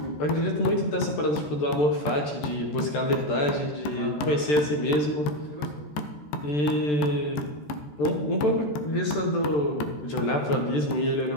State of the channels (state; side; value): late; right; 14 ms